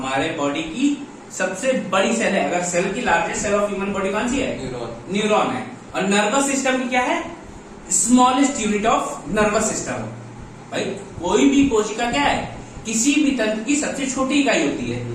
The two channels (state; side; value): identical; both; correlation 1.00